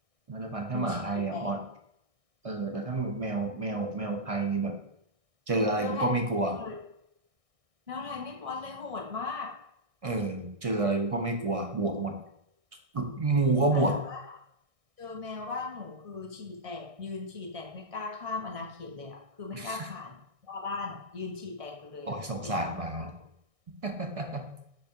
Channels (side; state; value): left; late; 1.6 ms